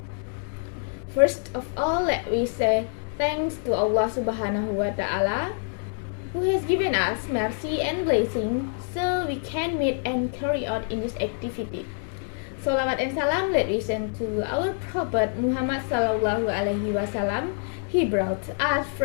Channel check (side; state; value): right; silent; 61 dB below the other